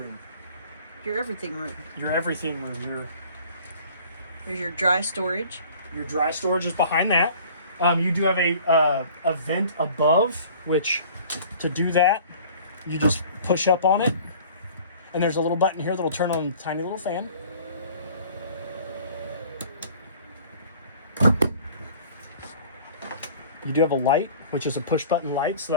Your everything room. Your everything room. There's your dry storage. Your dry storage is behind that. You do have a vent above, which to do that, you just push up on it, and there's a little button here that'll turn on a tiny little fan. You do have a light, which is a push button light, so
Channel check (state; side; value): inverted; both; correlation -0.49